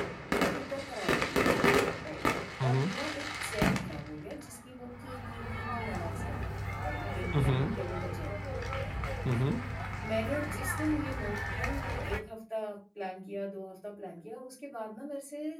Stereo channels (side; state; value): both; identical; correlation 1.00